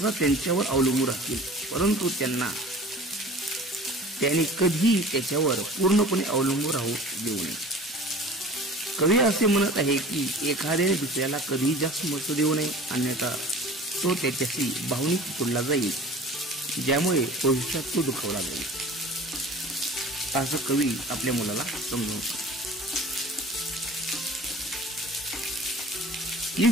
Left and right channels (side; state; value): both; normal; correlation 0.42